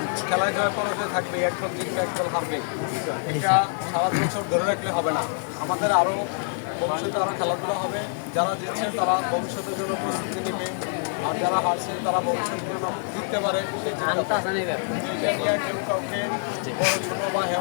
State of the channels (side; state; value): right; silent; 57 dB below the other